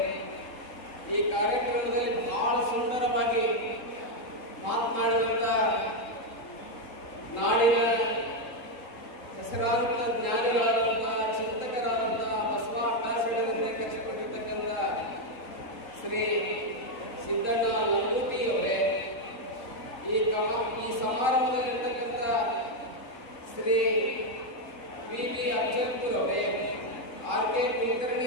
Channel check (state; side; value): late; right; 3.8 ms